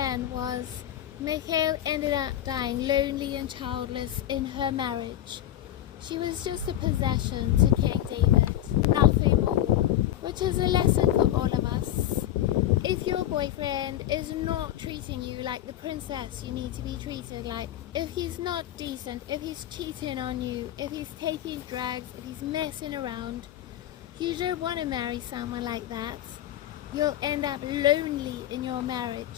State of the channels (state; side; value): quieter; right; 12.4 dB